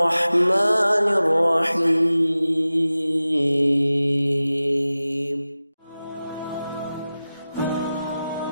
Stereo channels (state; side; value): inverted; both; correlation -0.95